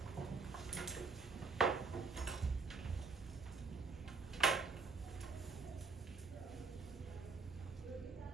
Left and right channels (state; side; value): quieter; left; 4.6 dB